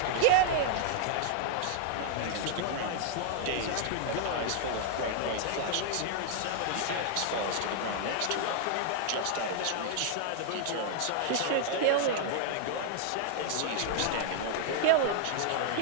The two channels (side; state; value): both; different; correlation -0.01